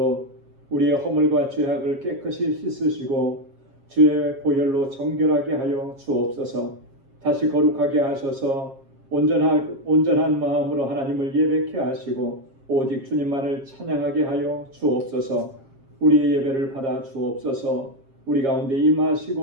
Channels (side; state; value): left; late; 7.4 ms